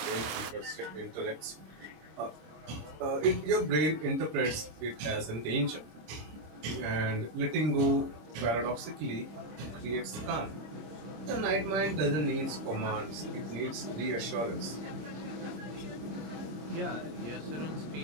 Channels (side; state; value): left; late; 26 ms